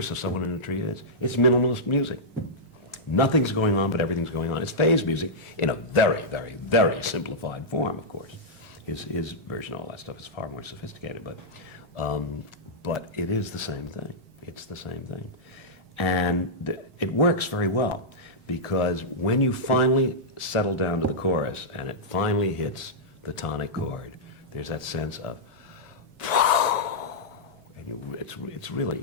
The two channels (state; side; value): normal; both; correlation -0.11